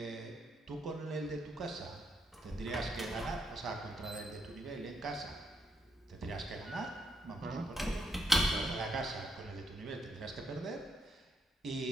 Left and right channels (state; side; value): normal; both; correlation 0.77